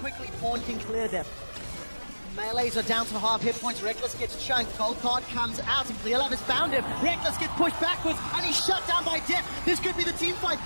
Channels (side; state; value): both; inverted; correlation -1.00